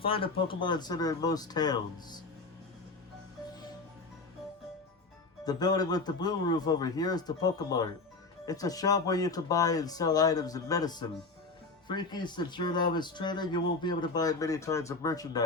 a Pokemon Center in most towns. The building with the blue roof over here is the Pokemart. It's a shop where you can buy and sell items and medicine. Freaky, since you're a novice trainer, you won't be able to buy many kinds of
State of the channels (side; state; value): right; quieter; 3.7 dB